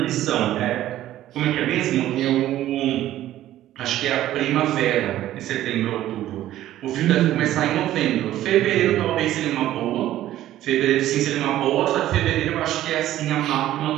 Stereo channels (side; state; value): left; quieter; 13.5 dB